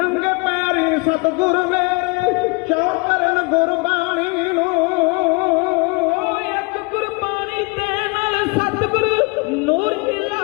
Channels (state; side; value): quieter; right; 30.3 dB